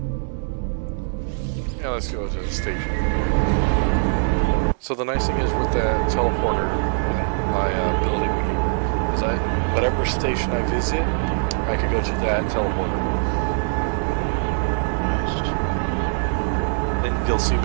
Yeah, let's go to the station. So the nice thing is with that teleporter in my building is that whatever station I visit, I could go to that teleporter. And you'll see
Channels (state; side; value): silent; left; digital silence